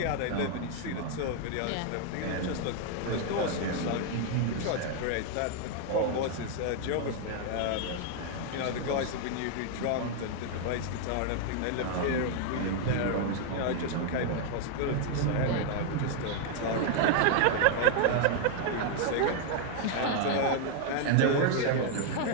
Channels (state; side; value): different; both; correlation 0.00